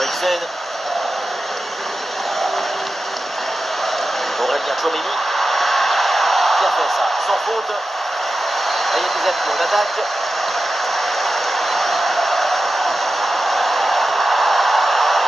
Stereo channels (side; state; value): both; normal; correlation 0.93